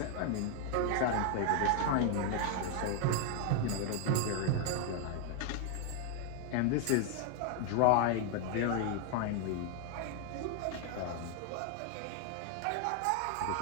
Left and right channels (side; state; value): both; different; correlation 0.00